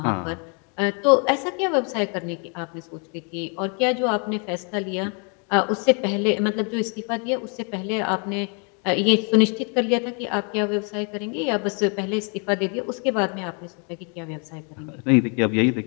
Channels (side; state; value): right; quieter; 37.1 dB